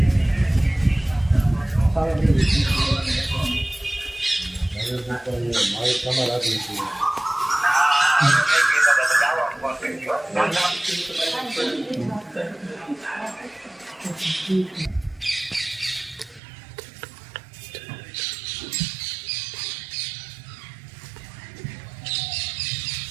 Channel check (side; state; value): left; drops out; at 16.4 s